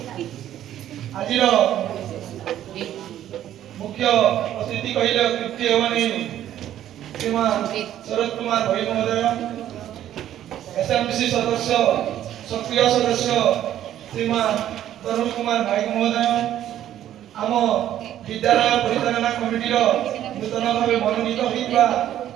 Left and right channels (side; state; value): left; quieter; 11.7 dB